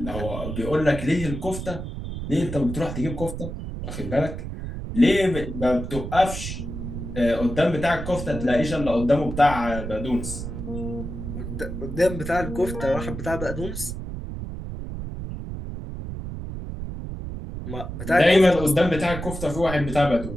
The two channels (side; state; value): right; noise; rumble, 7 dB below the sound